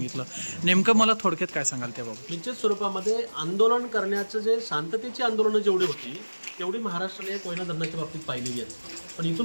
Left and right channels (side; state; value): both; inverted; correlation -1.00